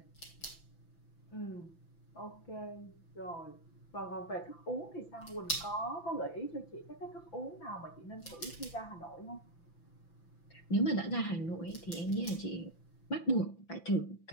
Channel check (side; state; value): right; late; 5.9 ms